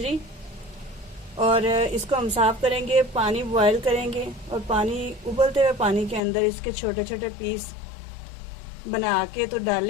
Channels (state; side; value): drops out; right; at 6.2 s